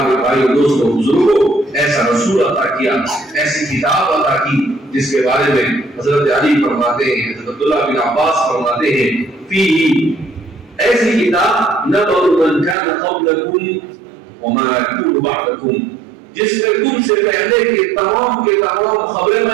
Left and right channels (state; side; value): drops out; left; at 12.8 s